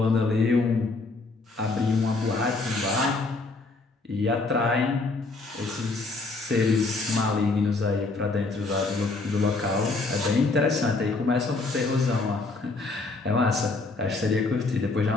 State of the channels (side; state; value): right; quieter; 3.5 dB